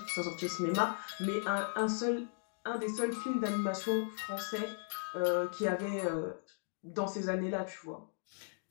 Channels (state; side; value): silent; right; digital silence